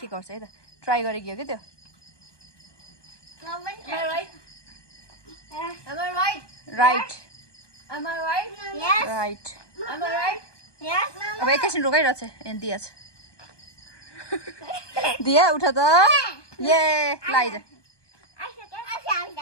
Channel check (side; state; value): right; late; 1.2 ms